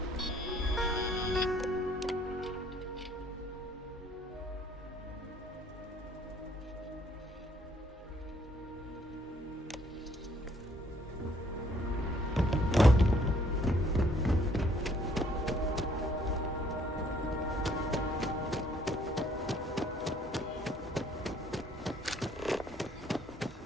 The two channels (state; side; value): normal; both; correlation 0.63